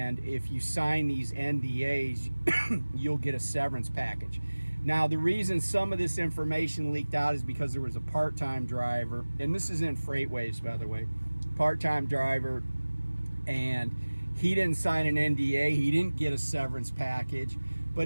if you sign these NDAs, you'll get a severance package. Now, the reason some of this information leaked out is because there was a part-time driver, and this is in FreightWaves, by the way, part-time driver, and he didn't sign an NDA. He didn't get a severance package,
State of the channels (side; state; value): both; inverted; correlation -1.00